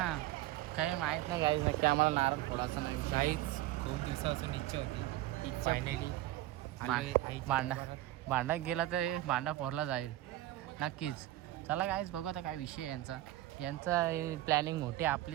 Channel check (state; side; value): quieter; left; 15.7 dB